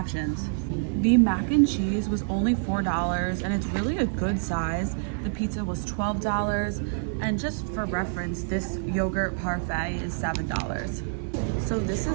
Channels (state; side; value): silent; left; 60 dB below the other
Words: The mac and cheese was only $4 and it's really a good size. The pizza was $12, and just for reference, this yogurt parfait is $7. So this